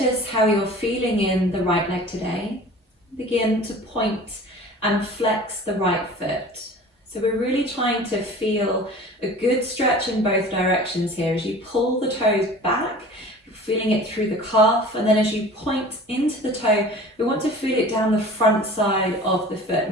how you're feeling in the right leg today. Begin to point and flex the right foot. So we're really trying to feel a good stretch in both directions here. As you pull the toes back, you're feeling it through the calf, and then as you point into the toe, we want to feel it down the front side of the foot,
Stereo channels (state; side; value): normal; both; correlation 0.42